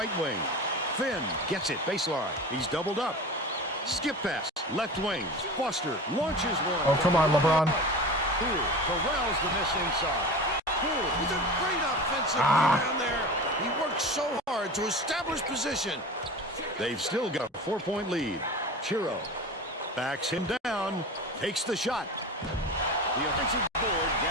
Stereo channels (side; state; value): both; normal; correlation 0.32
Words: wing. Finn gets it baseline. He's doubled up. Skip pass. Left wing. Foster launches one. Oh, come on, LeBron. Poole corrals the miss inside. Poole With a great offensive rebound there. He worked so hard to establish position. They've still got a 4-point lead. Chiro backs him down, takes the shot. The offensive board